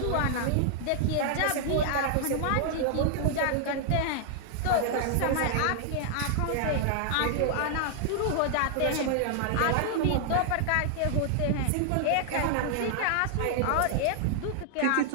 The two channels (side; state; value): both; different; correlation 0.00